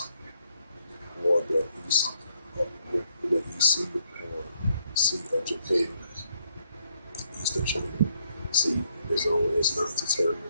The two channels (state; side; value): inverted; both; correlation -0.73